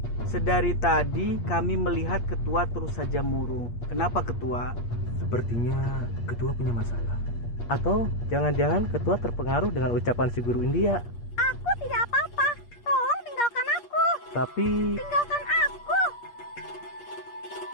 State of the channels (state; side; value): late; right; 8.5 ms